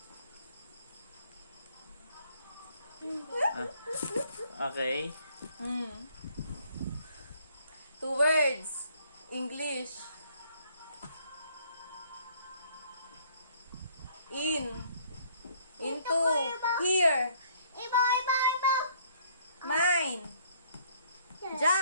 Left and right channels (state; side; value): inverted; both; correlation -0.63